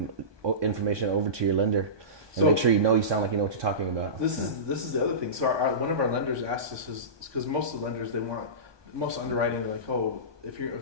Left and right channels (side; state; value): left; late; 1.2 ms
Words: information over to your lender. And make sure you sound like you know what you're talking about. This is the other thing. So one of our lenders asked us because most of the lenders most underwriting they're like, oh, if